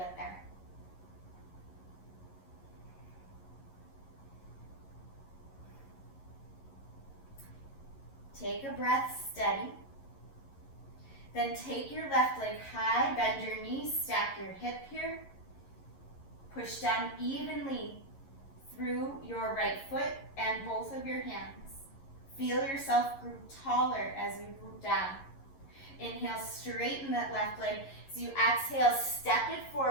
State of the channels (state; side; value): late; right; 11 ms